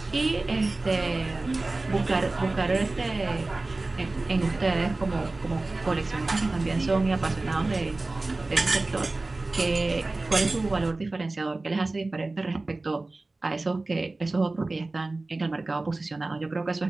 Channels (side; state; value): left; quieter; 3.2 dB